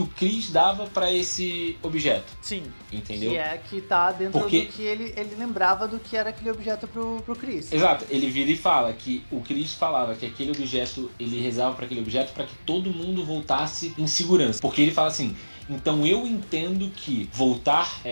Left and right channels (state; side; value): inverted; both; correlation -1.00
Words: o Chris dava pra esse objeto. Sim. Entendeu? Que tá dentro do que ele lembrava do que era aquele objeto pro Chris. Exato. Ele vira e fala que o Chris falava que aquele objeto, ele rezava pra aquele objeto pra que todo mundo voltasse em segurança. Porque ele fala assim... Então eu entendo que voltar